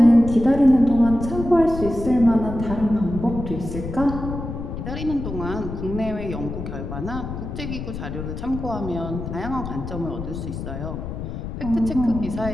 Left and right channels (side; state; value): left; noise; rumble, 7 dB below the sound